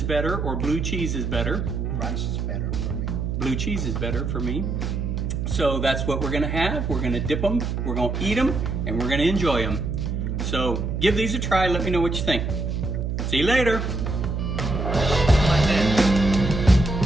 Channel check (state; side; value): noise; right; hum, 2 dB below the sound